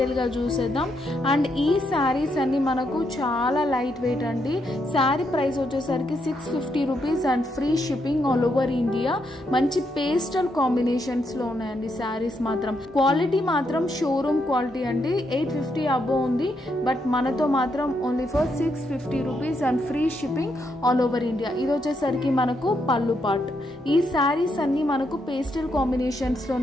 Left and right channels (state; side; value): normal; both; correlation 0.79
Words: చూసేద్దాం. అండ్ ఈ శారీస్ అన్ని మనకు చాలా లైట్ వెయిట్ అండి. శారీ ప్రైస్ వచ్చేసరికి 650 rupees and free shipping all over India. మంచి పేస్టల్ కాంబినేషన్స్లో ఉన్నాయండి శారీస్ మాత్రం. క్వాలిటీ మాత్రం షోరూమ్ క్వాలిటీ అండి. 850 అబోవ్ ఉంది. బట్ మనతో మాత్రం only for 650 rupees and free shipping all over India. ఇది వచ్చేసరికి మనకు పళ్ళు పార్ట్. ఈ శారీస్ అన్ని మనకు పేస్టల్ కాంబినేషన్